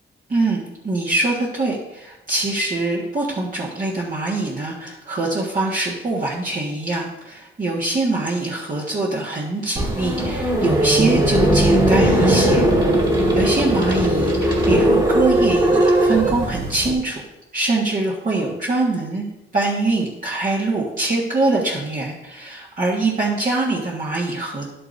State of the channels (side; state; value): both; normal; correlation 0.62